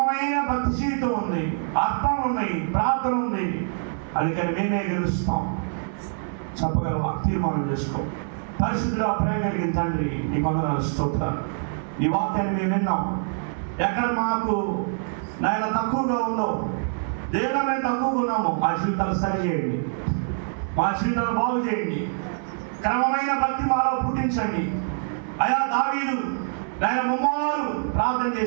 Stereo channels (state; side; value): silent; left; digital silence